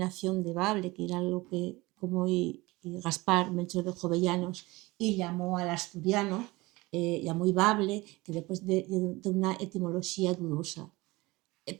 de bable, que era lo que como Gaspar Melchor de Jovellanos y llamó al asturiano, llamó bable, que después de una etimología dudosa.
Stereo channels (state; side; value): quieter; left; 21.7 dB